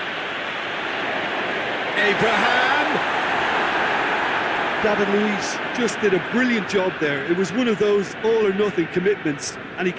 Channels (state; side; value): identical; both; correlation 1.00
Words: Abraham! David Luiz just did a brilliant job there. It was one of those all-or-nothing commitments, and he